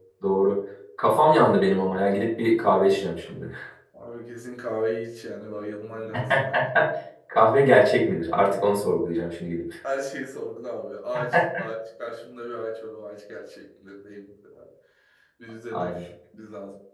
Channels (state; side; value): identical; both; correlation 1.00